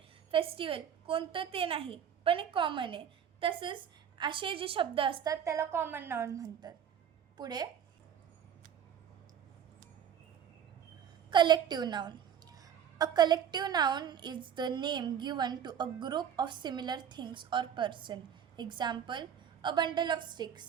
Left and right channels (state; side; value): quieter; left; 8.6 dB